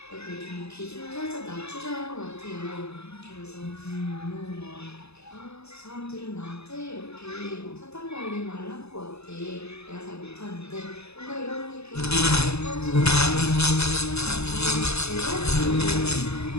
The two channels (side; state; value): right; late; 0.79 ms